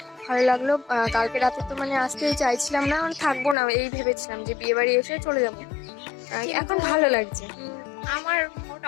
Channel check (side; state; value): right; drops out; at 3.6 s